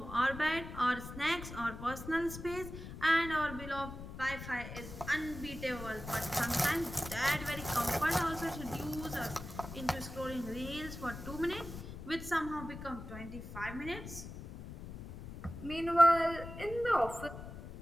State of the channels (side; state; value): left; noise; rumble, 11 dB below the sound